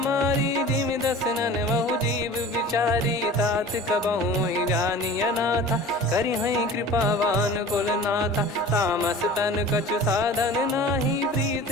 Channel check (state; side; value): normal; both; correlation 0.40